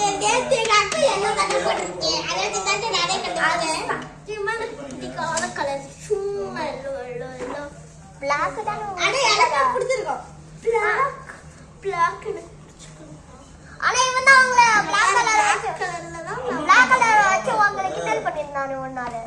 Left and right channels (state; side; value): identical; both; correlation 1.00